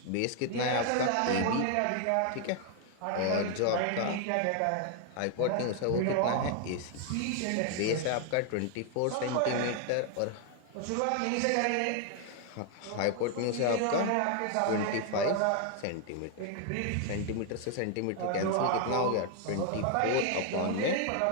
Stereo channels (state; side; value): different; both; correlation 0.00